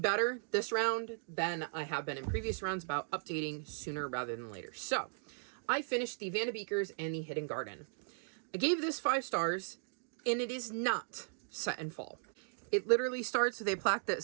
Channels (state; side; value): silent; left; digital silence